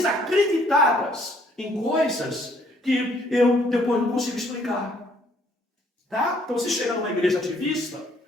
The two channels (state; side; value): normal; both; correlation 0.64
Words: em coisas que eu depois não consigo explicar. Tá? Então você chega numa igreja ativista